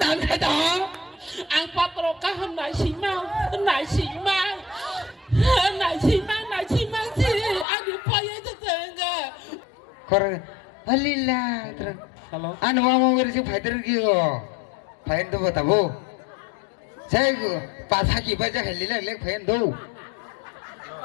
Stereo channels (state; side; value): drops out; right; at 7.7 s